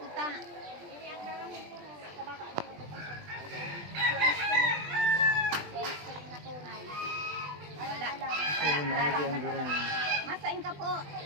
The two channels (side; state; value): left; late; 20 ms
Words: Wala. Kaya maagi ang gurang. Masain ka po.